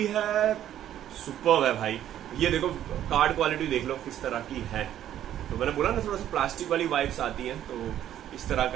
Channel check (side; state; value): left; quieter; 11.4 dB